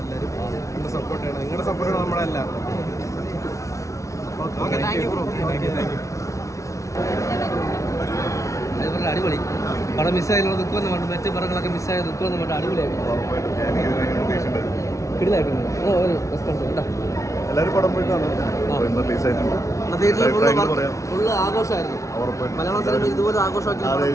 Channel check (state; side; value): late; right; 0.15 ms